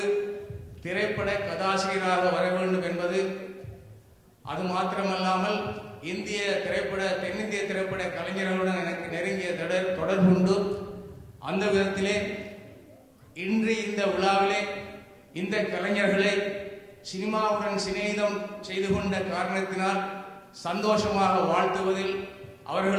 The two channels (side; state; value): both; identical; correlation 1.00